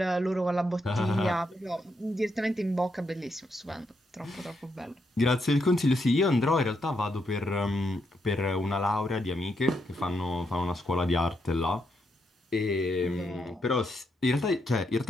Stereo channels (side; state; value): both; normal; correlation 0.80